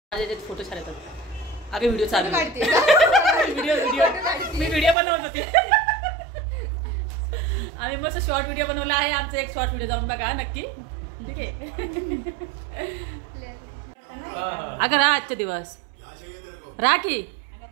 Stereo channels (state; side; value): drops out; left; at 5.0 s